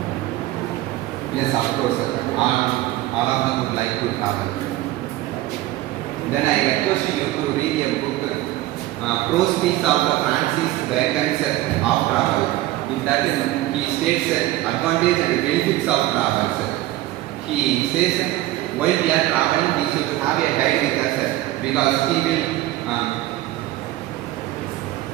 Yes, of course. All of them would like to travel. Then I request you to read a book, Prose Speaks of Francis Bacon's of Travel. In that he states advantages and benefits of travel. He says while we are traveling we should have a guide with us because he will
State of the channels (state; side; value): quieter; left; 16.2 dB